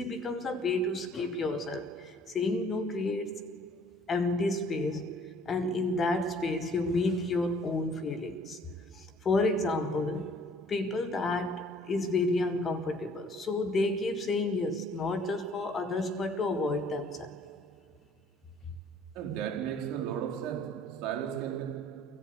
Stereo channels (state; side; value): normal; both; correlation 0.57